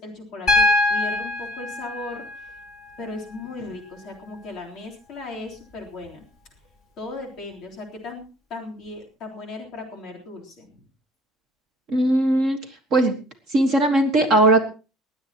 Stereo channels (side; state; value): both; normal; correlation 0.51